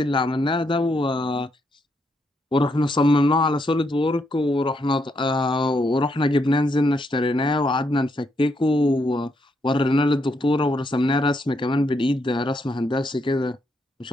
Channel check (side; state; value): both; normal; correlation 0.77